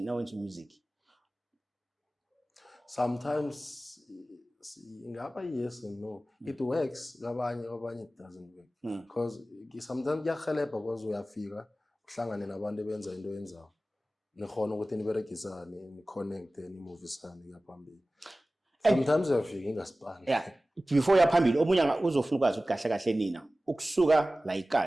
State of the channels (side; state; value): both; normal; correlation 0.96